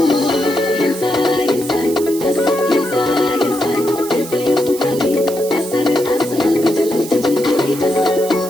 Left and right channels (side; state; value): right; noise; hiss, 12 dB below the sound